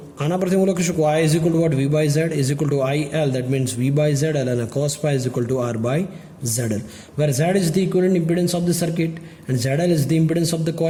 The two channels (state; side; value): identical; both; correlation 1.00